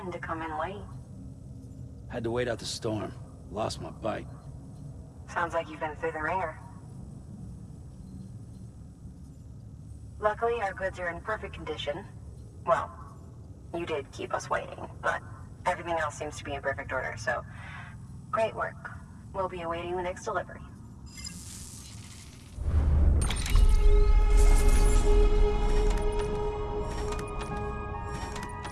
to come in late. Had to wait out the storm. Lost my bike. Sounds like you've been through the ringer. Luckily, our goods are in perfect condition. Well, you did keep us waiting, but everything else seems to be in perfect order, so great work. We'll be awaiting the next delivery.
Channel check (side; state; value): both; identical; correlation 1.00